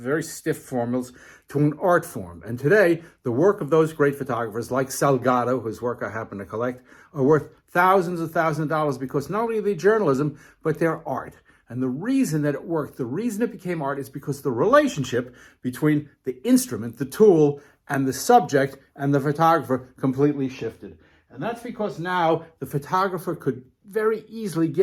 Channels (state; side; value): identical; both; correlation 1.00